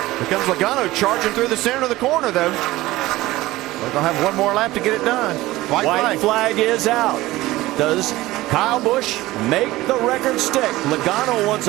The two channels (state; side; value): quieter; left; 17.8 dB